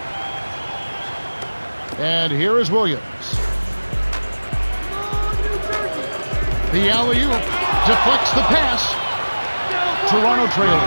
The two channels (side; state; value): both; inverted; correlation -1.00